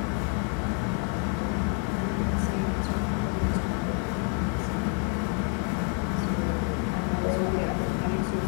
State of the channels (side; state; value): right; quieter; 34.5 dB